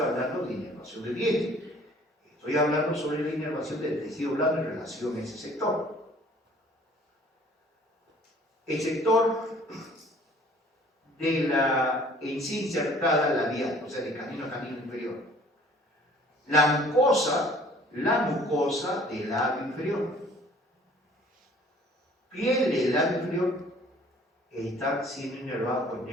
hablando de inervación del diente, estoy hablando sobre la inervación del tejido blando en relación a ese sector. El sector de la encía insertada labial, o sea, de canino a canino inferior. La mucosa del labio inferior. Piel del labio inferior está siendo inervada por el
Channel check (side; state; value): both; normal; correlation 0.54